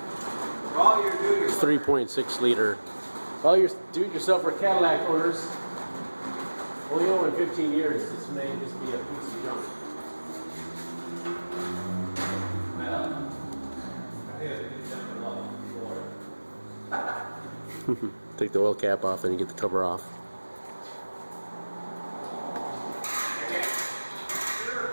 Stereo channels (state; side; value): inverted; both; correlation -1.00